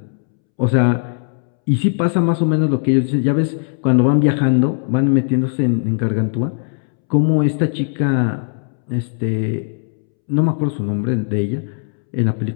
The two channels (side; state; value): right; silent; 67 dB below the other